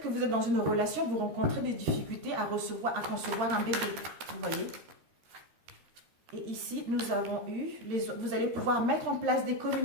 que vous êtes dans une relation, vous rencontrez des difficultés à concevoir un bébé. Vous voyez ? Et ici, nous avons eu... vous allez pouvoir mettre en place des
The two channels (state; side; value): late; left; 13 ms